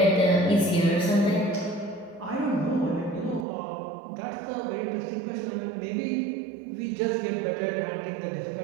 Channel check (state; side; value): drops out; left; at 3.5 s